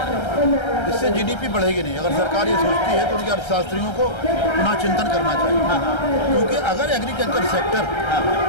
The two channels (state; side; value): late; right; 1.3 ms